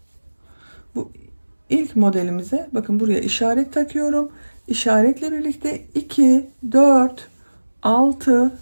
Bu ilk modelimize bakın buraya işaret takıyorum. İşaretle birlikte 2, 4, 6,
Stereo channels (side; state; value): both; inverted; correlation -1.00